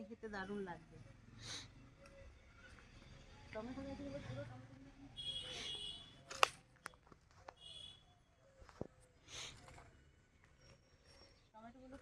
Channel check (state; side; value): identical; both; correlation 1.00